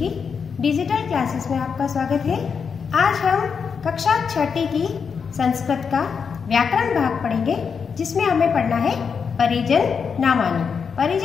डिजिटल क्लासेस में आपका स्वागत है। आज हम कक्षा 6ठी की संस्कृत का व्याकरण भाग पढ़ेंगे, जिसमें हमें पढ़ना है परिजन नामानी।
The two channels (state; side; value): quieter; right; 6.1 dB